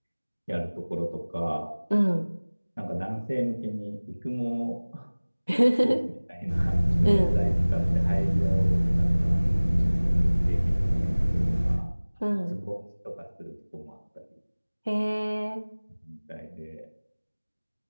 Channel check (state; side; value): inverted; both; correlation -1.00